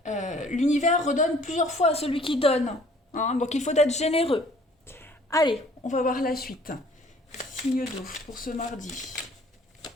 L'univers redonne plusieurs fois à celui qui donne, hein, donc il faut être généreux. Allez, on va voir la suite. Signe d'eau pour ce mardi.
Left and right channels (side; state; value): both; normal; correlation 0.55